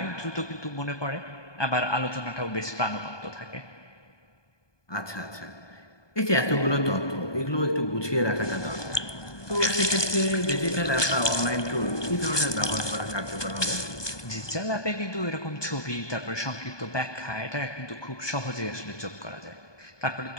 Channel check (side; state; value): right; late; 1.2 ms